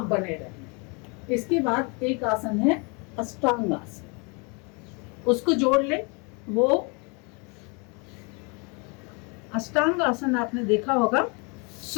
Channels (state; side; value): quieter; right; 31.8 dB